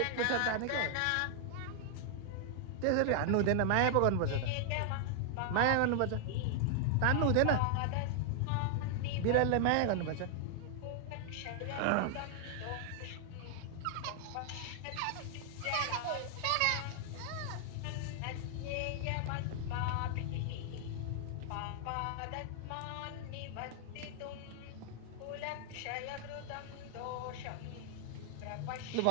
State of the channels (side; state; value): both; different; correlation 0.00